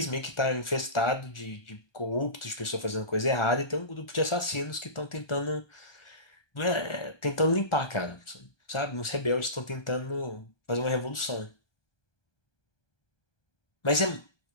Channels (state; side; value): late; right; 1.4 ms